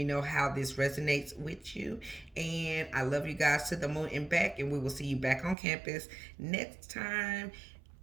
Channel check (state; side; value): drops out; left; at 5.6 s